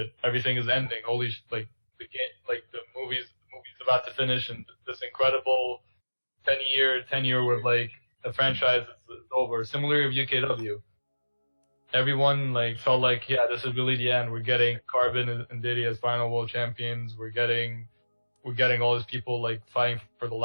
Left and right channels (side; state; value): both; inverted; correlation -1.00